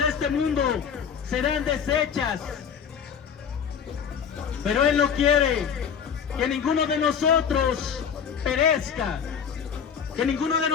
este mundo serán deshechas, pero Él no quiere que ninguno de nosotros perezca, que ninguno de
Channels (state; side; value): quieter; right; 7.3 dB